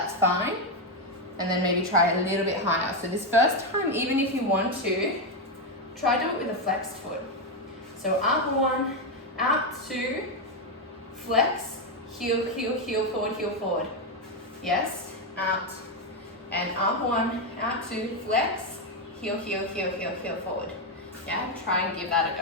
fine. And then maybe try a little bit higher. So this first time, even if you want to, try do it with a flexed foot. So up 1, out 2, flex, heel, heel, heel forward. Yes, out. And up 1, out 2, flex, heel, heel, heel, heel, heel forward. Yeah, try and give that a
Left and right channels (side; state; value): both; normal; correlation 0.06